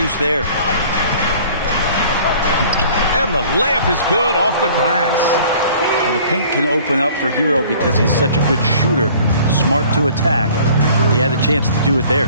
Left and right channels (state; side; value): inverted; both; correlation -0.51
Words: there. And the layup is good off the glass. Well, the paint can open up for Hero because he's such a good shooter, smart to attack. He had a chance to do it there.